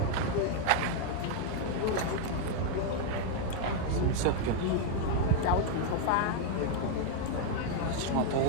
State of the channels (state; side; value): different; both; correlation 0.00